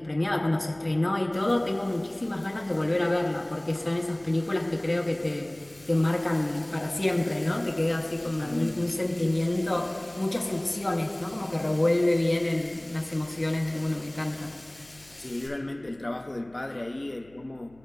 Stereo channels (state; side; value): noise; left; hum, 28 dB below the sound